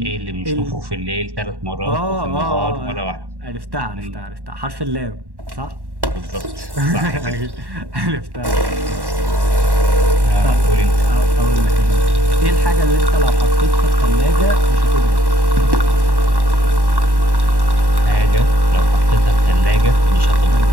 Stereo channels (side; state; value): left; late; 1.1 ms